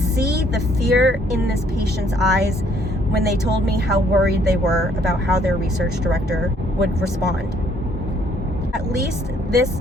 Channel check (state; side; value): normal; both; correlation 0.64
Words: the fear in this patient's eyes when they told me how worried they were about how their research director would respond. At least this